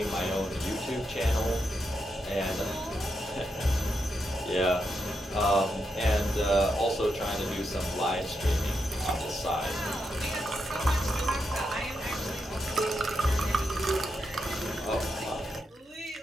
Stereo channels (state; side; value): normal; both; correlation 0.84